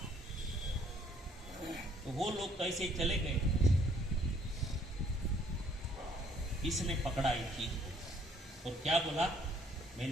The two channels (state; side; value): normal; both; correlation 0.63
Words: तो वो लोग कैसे चले गए, इसने पकड़ा एक चीज को और क्या बोला,